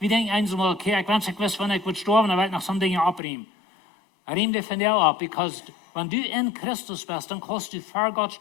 denken einmal, okay, ich weiß, wenn ich sterben, dann werde ich noch so Dinge abriemen. Riem dich von dir ab, weil wenn du in Christus bist, dann kannst du für Gott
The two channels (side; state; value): right; drops out; at 3.2 s